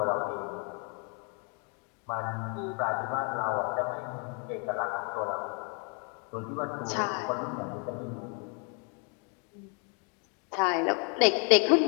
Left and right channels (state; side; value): quieter; right; 36.9 dB